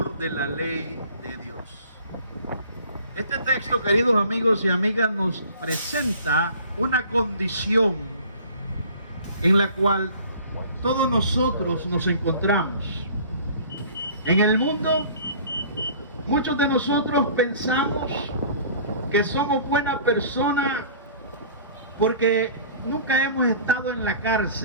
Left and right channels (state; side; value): inverted; both; correlation -0.47